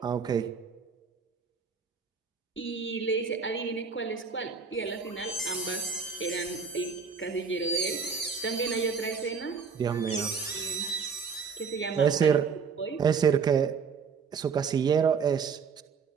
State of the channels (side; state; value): left; quieter; 5.7 dB